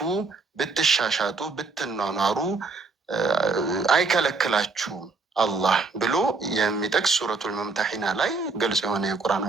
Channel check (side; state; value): left; quieter; 4.0 dB